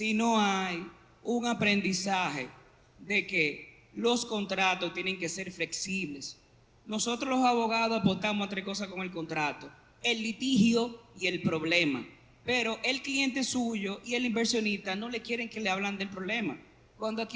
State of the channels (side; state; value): both; identical; correlation 1.00